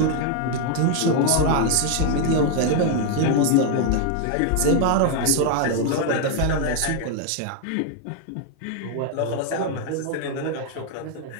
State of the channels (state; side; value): different; both; correlation 0.00